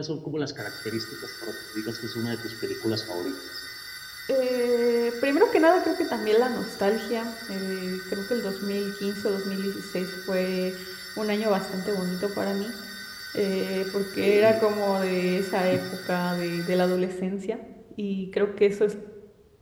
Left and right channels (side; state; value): both; identical; correlation 1.00